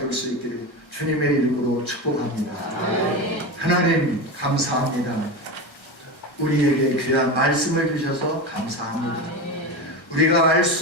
수 있기를 주님의 이름으로 축복합니다. 하나님 감사합니다. 우리에게 귀한 말씀을 주셔서 감사합니다. 우리가 알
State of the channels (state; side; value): late; right; 1.3 ms